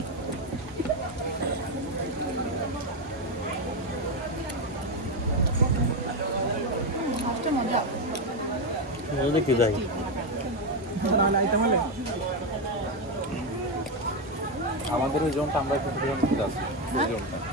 দেখি যাই আমাদের ওই জোনটা আমরা একটু আছি ওই জোনটা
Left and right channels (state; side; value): normal; both; correlation 0.08